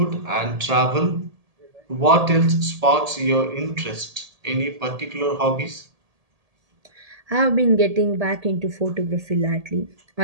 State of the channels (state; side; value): late; left; 1.8 ms